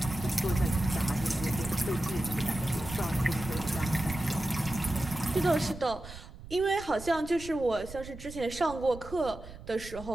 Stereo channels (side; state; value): right; noise; rumble, 14 dB below the sound